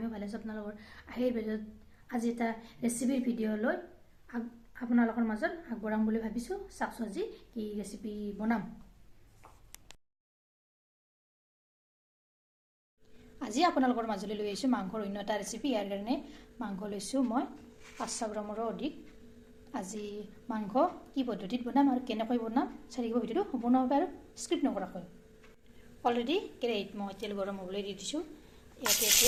ভালে আছো আপোনালোকৰ আহিৰ ভিডিঅ'ত আজি এটা ৰেচিপিৰ ভিডিঅ' লৈ আপোনালোকৰ মাজত আগবঢ়াম বুলি ভাবিছো চাকছো আজি কি ৰেচিপি বনাম আজি আপোনালোকৰ মাজলৈ লৈ আহিছো মাংসৰ অন্য এটা ৰেচিপি ইয়াৰ কাৰণে মাংস লৈছো মই 500 গ্ৰামৰ অধিক আজি মাংস কি পদ্ধতিত বনাম আৰু কেনেকৈ বনাম চাৰিব ভিডিঅ'টো সম্পূৰ্ণভাৱে আৰু স্ক্ৰিপ্ট নকৰাকৈ Already great মই তেল গৰম হ'বলৈ দি দিছো ইয়াতে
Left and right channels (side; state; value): both; identical; correlation 1.00